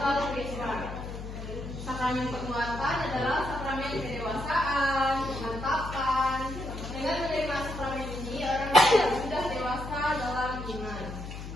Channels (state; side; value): noise; left; hum, 9 dB below the sound